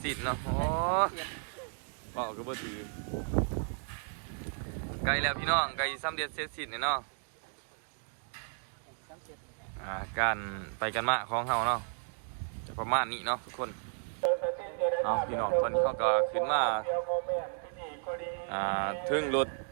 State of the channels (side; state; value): left; silent; 55 dB below the other